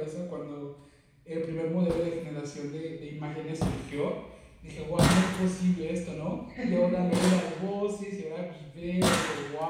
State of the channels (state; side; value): identical; both; correlation 1.00